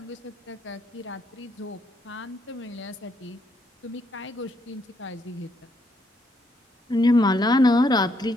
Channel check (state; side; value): normal; both; correlation 0.74